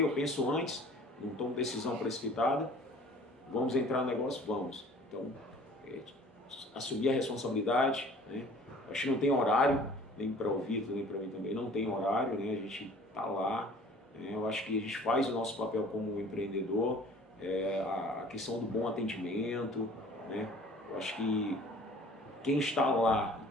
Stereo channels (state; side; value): normal; both; correlation 0.49